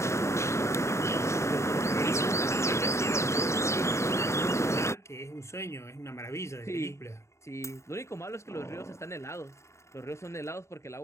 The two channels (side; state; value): right; late; 0.14 ms